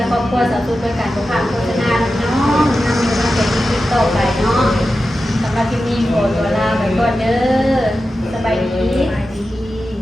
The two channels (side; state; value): both; normal; correlation 0.92